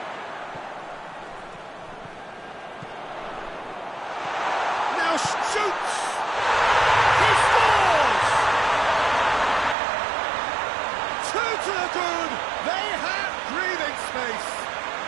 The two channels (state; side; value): drops out; left; at 9.8 s